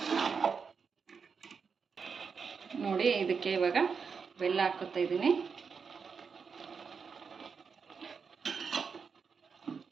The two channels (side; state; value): left; quieter; 5.7 dB